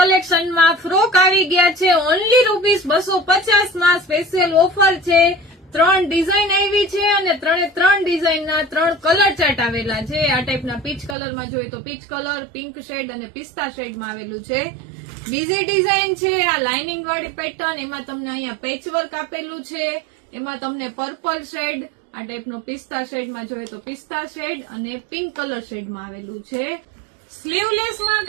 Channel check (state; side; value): drops out; left; at 11.2 s